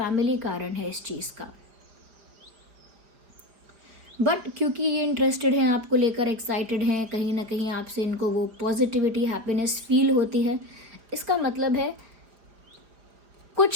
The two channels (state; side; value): late; left; 4.9 ms